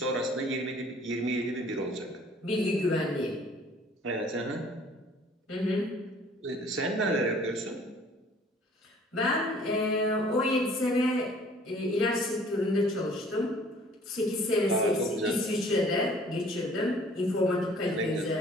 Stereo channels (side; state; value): both; normal; correlation 0.54